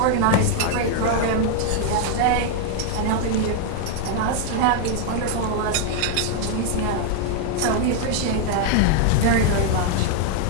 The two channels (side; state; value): both; different; correlation 0.00